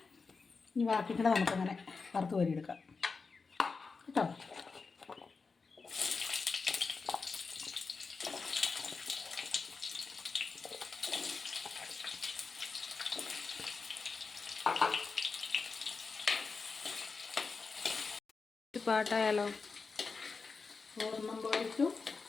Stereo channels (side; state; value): right; quieter; 4.6 dB